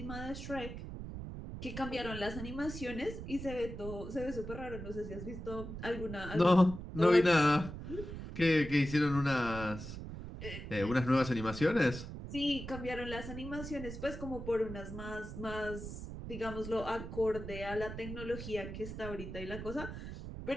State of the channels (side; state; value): right; noise; rumble, 9 dB below the sound